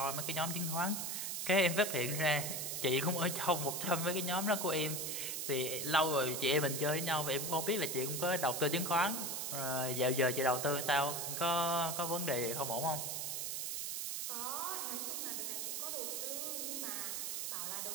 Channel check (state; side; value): noise; right; hiss, 2 dB below the sound